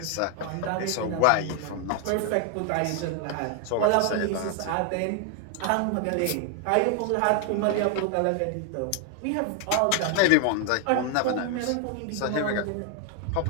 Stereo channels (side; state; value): both; different; correlation 0.00